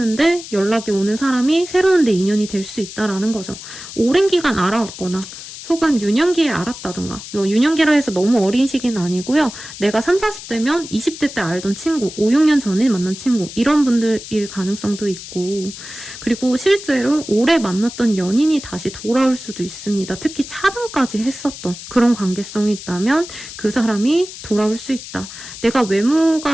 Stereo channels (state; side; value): noise; left; hiss, 13 dB below the sound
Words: 연락이 오는 사람이 새로운 내 인연이 될 수 있다라는 거죠. 오랜 기간 알아왔거나, 혹은 유년기에 알았다던가, 유년기라 해서 너무 어린 시기는 아니고요. 내가 30, 40대면 20대 때 알던 친구, 5, 6년 전에 만난 친구, 이런 분들일 가능성도 있고, 그리고 실제로 오래 만났던 연인이 다시 돌아올 수도 있습니다. 특히 차단까지 했었던 그런 관계성이 있다면 그 사람이 돌아올 수 있다. 내가